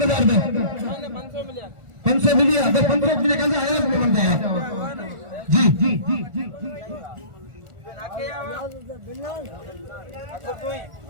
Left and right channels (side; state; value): left; late; 1.4 ms